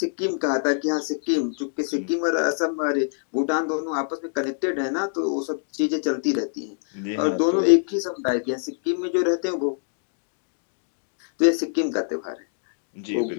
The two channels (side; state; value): right; silent; digital silence